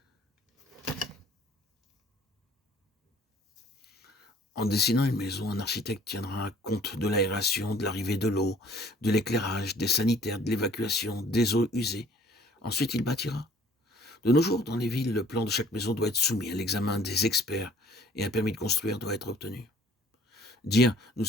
En dessinant une maison, un architecte tiendra compte de l'aération, de l'arrivée de l'eau, de l'éclairage, des sanitaires, de l'évacuation, des eaux usées. Ensuite, il bâtira. De nos jours, dans les villes, le plan de chaque maison doit être soumis à l'examen des experts et un permis de construire doit être obtenu. Dire « nous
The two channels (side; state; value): both; normal; correlation 0.55